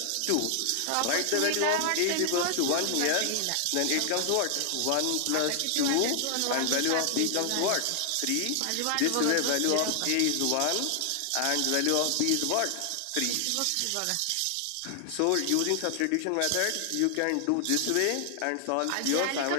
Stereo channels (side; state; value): both; different; correlation 0.00